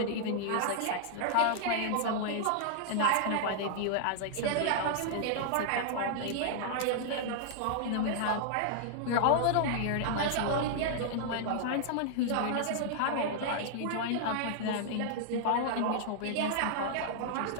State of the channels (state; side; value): different; both; correlation -0.01